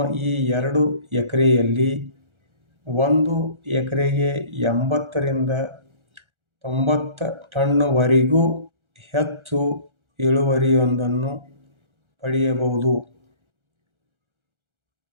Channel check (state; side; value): late; left; 1.4 ms